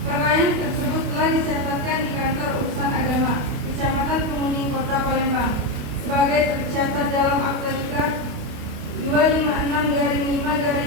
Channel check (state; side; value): late; left; 29 ms